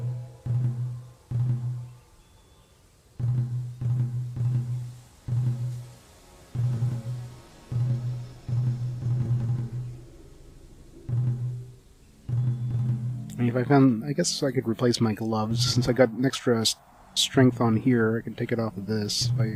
I mean, if I found, I guess I could replace my gloves since I got an extra strength on here. I can take it off of this if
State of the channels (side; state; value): both; identical; correlation 1.00